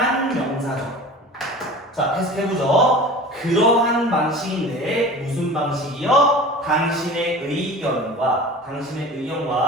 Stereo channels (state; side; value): normal; both; correlation 0.38